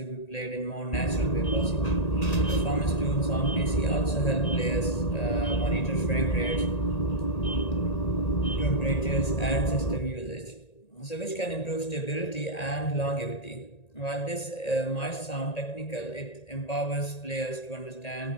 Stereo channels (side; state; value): right; late; 1.9 ms